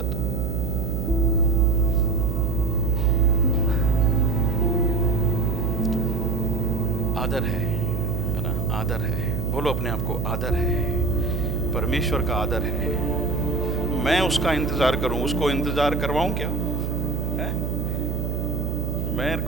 हो। आदर है ना? आदर है। बोलो अपने आप को आदर है, परमेश्वर का आदर है। मैं उसका इंतजार करूं, उसको इंतजार करवाऊं क्या है? मेरे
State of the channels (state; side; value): noise; right; hum, 1 dB below the sound